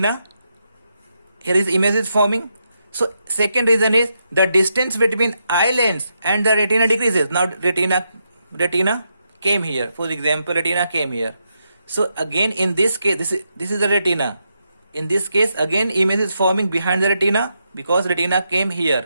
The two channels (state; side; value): inverted; both; correlation -0.83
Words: Here is image is forming. So second reason is the distance between eye lens and the retina decreases. Now retina came here. For example, retina came here. So again in this case, this is the retina. In this case, again image is forming behind the retina because retina came